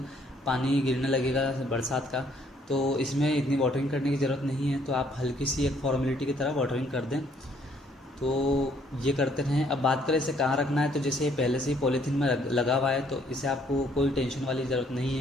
पानी गिरने लगेगा बरसात का, तो इसमें इतनी वाटरिंग करने की ज़रूरत नहीं है। तो आप हल्की सी एक फॉर्मेलिटी की तरह वाटरिंग कर दें। तो ये करते रहें। अब बात करें इसे कहाँ रखना है, तो जैसे ये पहले से ही पॉलीथीन में लगा हुआ है तो इसे आपको कोई टेंशन वाली ज़रूरत नहीं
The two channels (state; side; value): normal; both; correlation 0.65